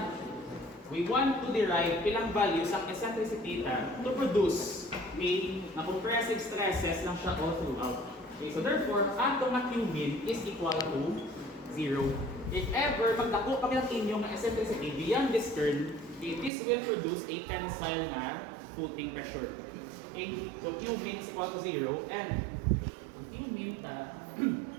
we want to derive ilang values ang eccentricity to produce na compressive stresses lang siya all throughout. Okay, so therefore, ato nga Q min is equal to 0. If ever magdako pa ang inyong eccentricity beyond this term, okay, this will produce a tensile na footing pressure. Okay, so Q min is equal to 0 and Q min ta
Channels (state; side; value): drops out; left; at 16.5 s